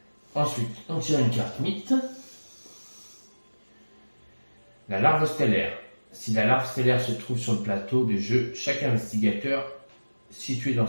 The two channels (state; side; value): inverted; both; correlation -1.00